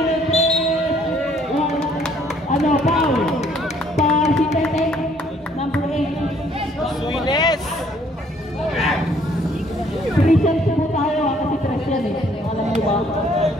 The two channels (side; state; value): both; normal; correlation 0.63